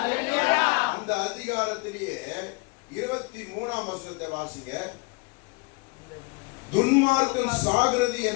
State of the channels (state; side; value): quieter; right; 29.3 dB